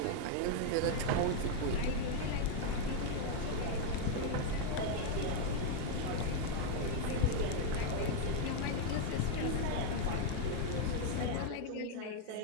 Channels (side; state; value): both; different; correlation 0.00